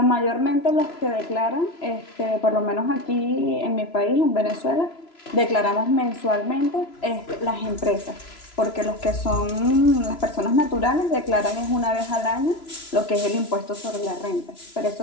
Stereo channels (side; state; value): right; late; 3.0 ms